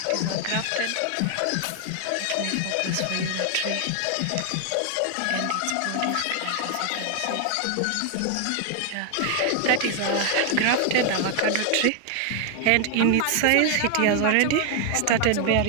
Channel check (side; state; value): both; different; correlation 0.00